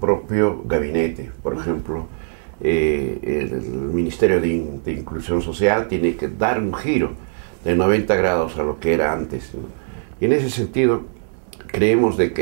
gabinete. Por ejemplo, el Ministerio de Inclusión Social tiene que dar un giro de 90 grados a lo que era antes, ¿no? Y en ese sentido creemos de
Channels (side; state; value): left; silent; digital silence